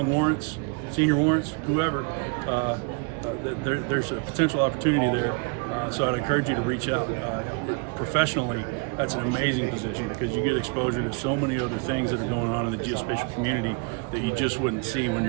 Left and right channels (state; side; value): quieter; left; 33.5 dB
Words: warrants, senior warrants, whoever, there's a potential opportunity there. So I'd encourage you to reach out. Professionally, that's an amazing position because you get exposure to so many other things that are going on in the geospatial community that you just wouldn't see when